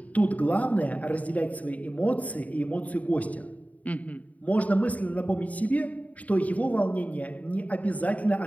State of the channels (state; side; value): late; right; 0.071 ms